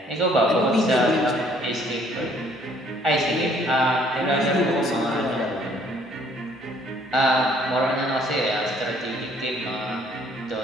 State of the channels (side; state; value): both; normal; correlation 0.61